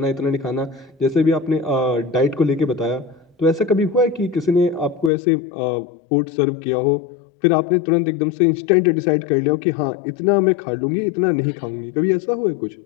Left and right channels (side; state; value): right; drops out; at 5.1 s